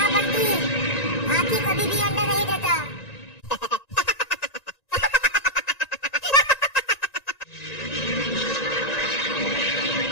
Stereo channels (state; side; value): late; right; 1.9 ms